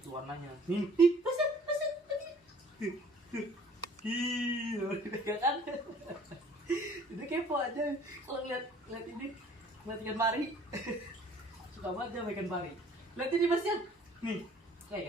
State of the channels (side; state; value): both; normal; correlation 0.54